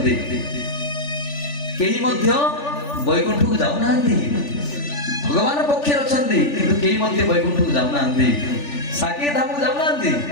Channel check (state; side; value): late; right; 3.4 ms